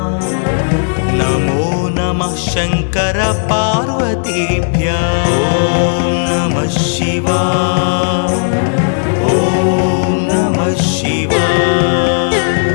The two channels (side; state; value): right; silent; digital silence